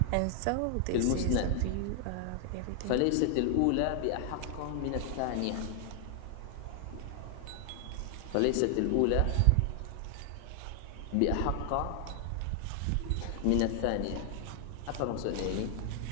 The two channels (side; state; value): both; different; correlation 0.00